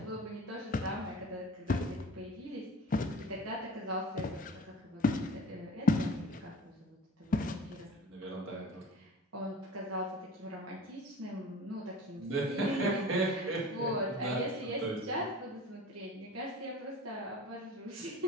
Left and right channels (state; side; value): normal; both; correlation 0.41